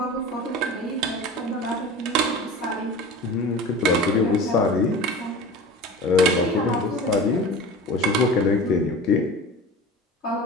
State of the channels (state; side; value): normal; both; correlation 0.35